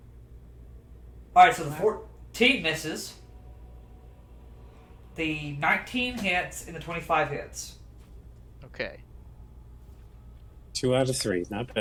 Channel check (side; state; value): both; identical; correlation 1.00